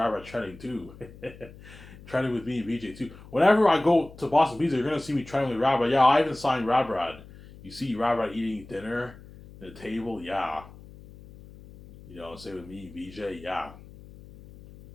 trending too. Trending with me and VJ too. Whenever I go to Boston Pizza, you're gonna see me trending with Rabbi. Yeah, Ivan signed Rabrad. You see Rabrad eating dinner at the table. Yeah. You know, say with me, VJ. Yeah.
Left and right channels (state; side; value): noise; left; hum, 19 dB below the sound